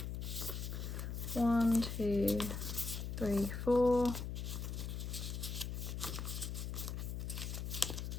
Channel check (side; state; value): left; noise; hum, 4 dB below the sound